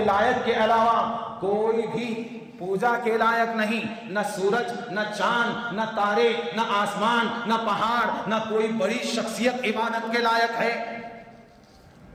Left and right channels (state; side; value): identical; both; correlation 1.00